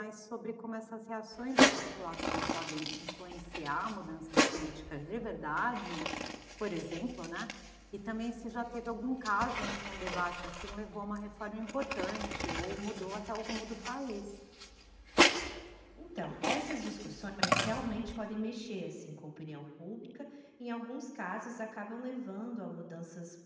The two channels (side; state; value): both; identical; correlation 1.00